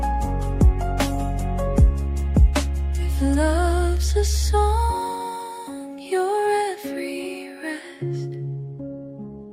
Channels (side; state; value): both; identical; correlation 1.00